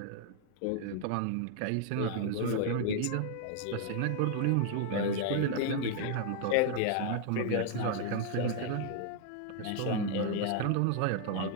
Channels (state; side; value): different; both; correlation 0.00